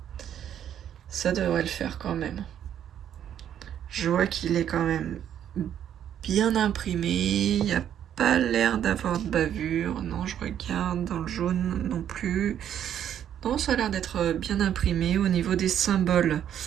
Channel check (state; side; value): quieter; left; 9.9 dB